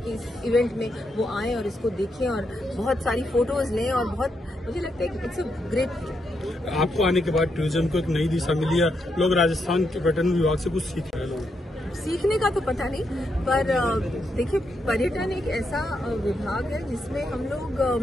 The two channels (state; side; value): normal; both; correlation 0.81